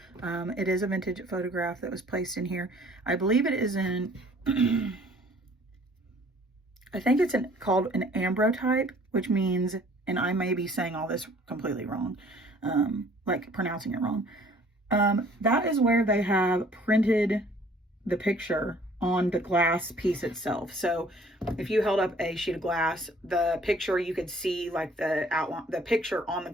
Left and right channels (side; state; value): both; normal; correlation 0.56